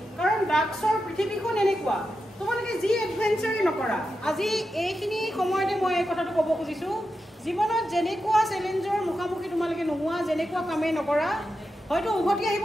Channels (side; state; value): both; normal; correlation 0.89